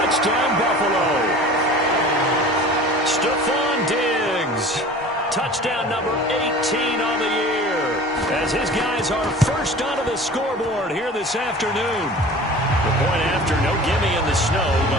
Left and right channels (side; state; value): both; normal; correlation 0.41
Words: Buffalo. Stephon Diggs. Touchdown number 18 on the year. As his guys are first onto the scoreboard here this afternoon. The point after, no gimme in the snow,